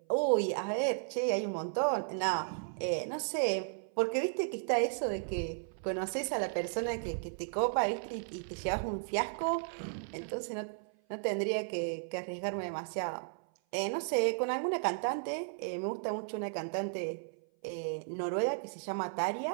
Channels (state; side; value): silent; left; 55 dB below the other